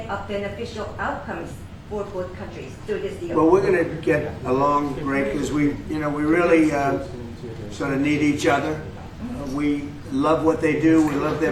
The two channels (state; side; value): identical; both; correlation 1.00